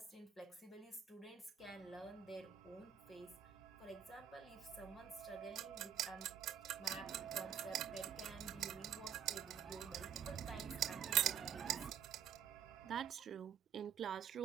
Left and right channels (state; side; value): quieter; left; 8.9 dB